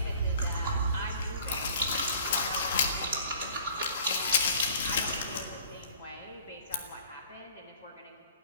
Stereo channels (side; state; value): both; inverted; correlation -0.50